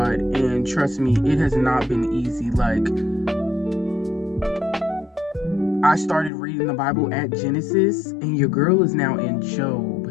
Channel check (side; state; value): right; drops out; at 6.3 s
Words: And trust me, it has not been easy. Like, I started reading the Bible at Genesis, and your girl is now in Job.